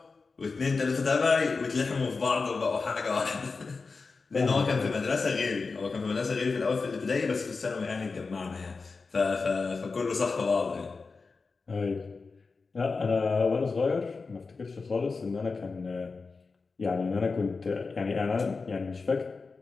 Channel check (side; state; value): right; quieter; 4.3 dB